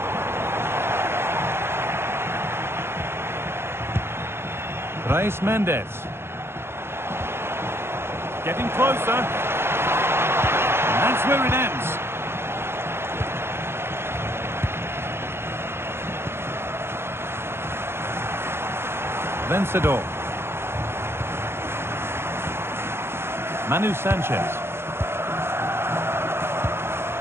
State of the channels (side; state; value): left; late; 0.12 ms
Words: Reis Mendes. Getting closer. And that's where it ends. Vencedor. Manu Sanchez.